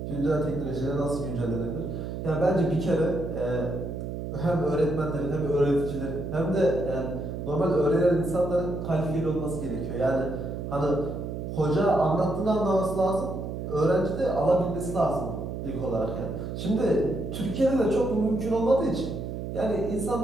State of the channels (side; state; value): right; noise; hum, 6 dB below the sound